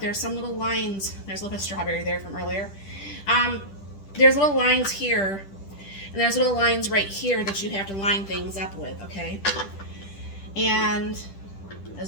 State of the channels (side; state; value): right; late; 10 ms